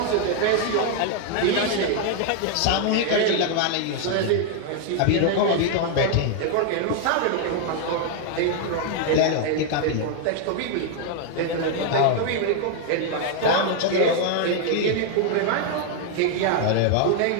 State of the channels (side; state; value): both; different; correlation 0.00